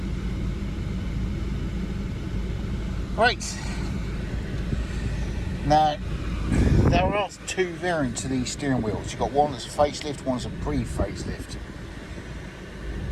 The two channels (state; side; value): identical; both; correlation 1.00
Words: Right. Now, there are two variants of these steering wheels. You've got one that's a facelift, one's a pre-facelift.